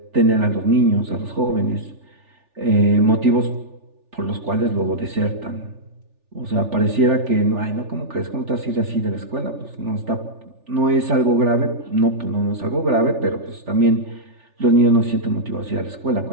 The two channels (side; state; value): left; late; 3.4 ms